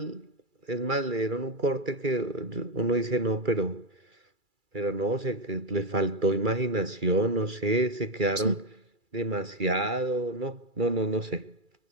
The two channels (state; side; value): late; left; 2.3 ms